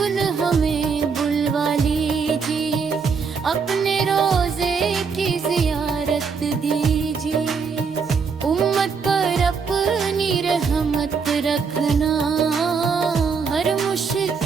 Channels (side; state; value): left; quieter; 5.5 dB